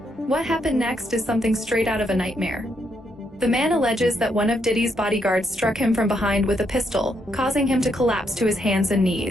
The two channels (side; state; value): both; normal; correlation 0.77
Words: What happened next is something straight out of a nightmare. The man alleges that one of Diddy's bodyguards struck him from behind with a pistol, causing him to collapse to his hands and